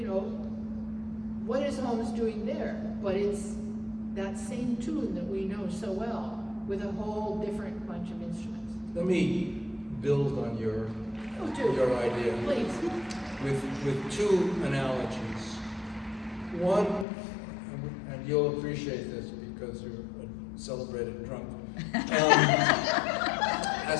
know, what is Holmes doing there? But it's that same tune that we know so well, with a whole different bunch of instruments. Let me build on your idea. Please. With two analogies. One, and you'll appreciate this because you're a celebrated drunk,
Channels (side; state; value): right; drops out; at 17.1 s